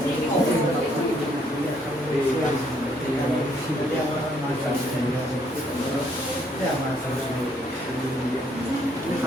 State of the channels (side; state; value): both; normal; correlation 0.68